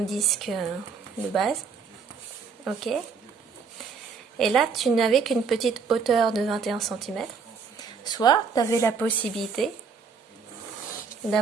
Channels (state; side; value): quieter; left; 5.5 dB